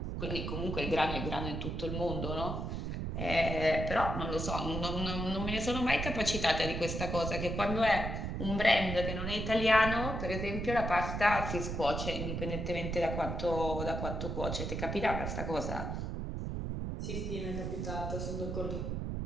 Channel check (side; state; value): right; noise; rumble, 3 dB below the sound